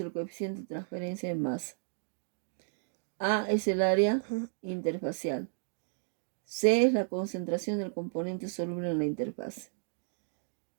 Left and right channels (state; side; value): silent; left; digital silence